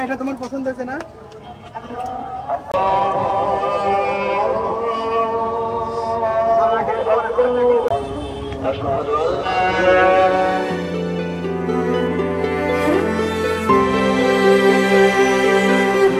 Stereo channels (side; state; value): both; identical; correlation 1.00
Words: এটা তোমার পছন্দ হয়েছে না?